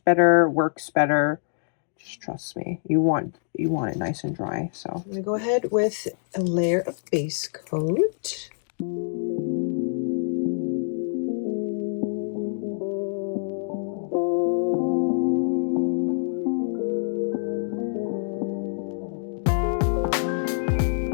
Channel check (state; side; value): silent; right; digital silence